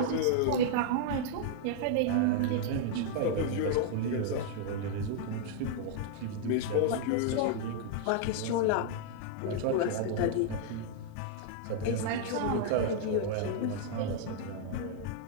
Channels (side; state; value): both; different; correlation -0.01